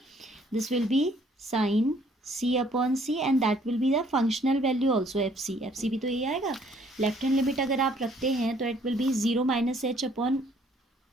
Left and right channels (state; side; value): normal; both; correlation 0.62